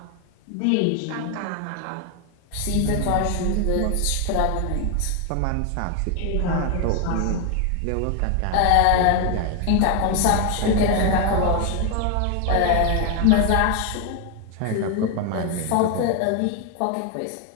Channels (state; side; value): different; both; correlation 0.01